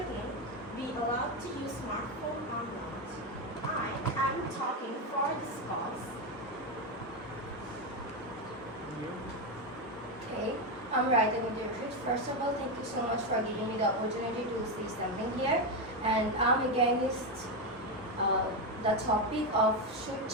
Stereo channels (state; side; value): normal; both; correlation 0.10